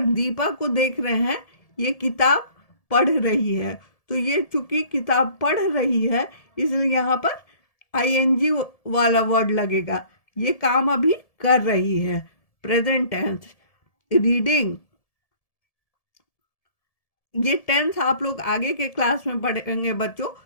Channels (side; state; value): right; late; 1.7 ms